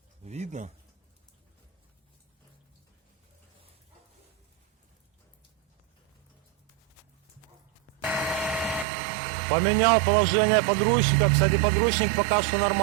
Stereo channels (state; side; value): drops out; left; at 8.8 s